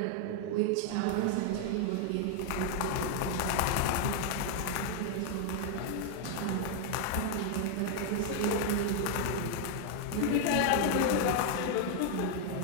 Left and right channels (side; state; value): both; different; correlation 0.00